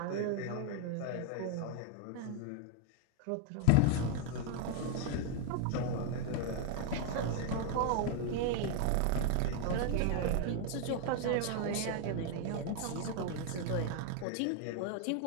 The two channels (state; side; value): different; both; correlation 0.00